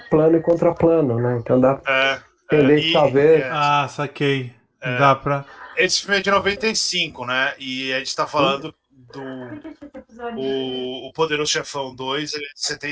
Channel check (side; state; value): both; identical; correlation 1.00